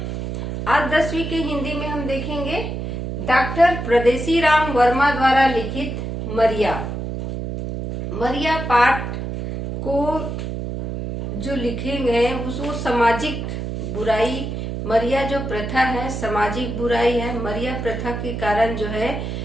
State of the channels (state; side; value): noise; right; hum, 5 dB below the sound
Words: आज 10वीं के हिंदी में हम देखेंगे डॉक्टर परदेसी राम वर्मा द्वारा लिखित मरिया। मरिया पाठ को जो लिखेंगे वो सामाजिक बुराई, मरिया जो प्रथा है सामाजिक बुराई है। मरिया प्रथा के कारण जो है